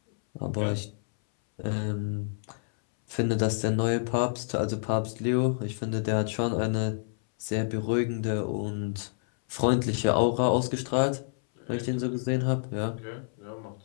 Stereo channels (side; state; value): right; silent; 59 dB below the other